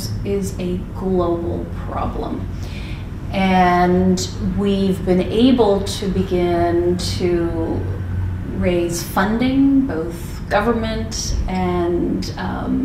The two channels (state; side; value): identical; both; correlation 1.00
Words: is a global problem. And we've been able to begin to raise funding, both government and